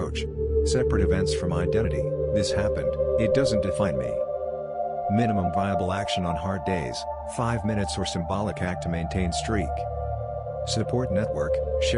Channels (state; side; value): identical; both; correlation 1.00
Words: separate events from identity. This happened, it doesn't define me. Minimum viable action on hard days, 5 minutes or symbolic act to maintain streak. Support network: